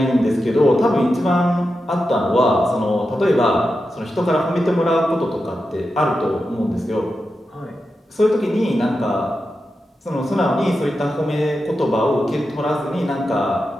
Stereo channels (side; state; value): both; normal; correlation 0.89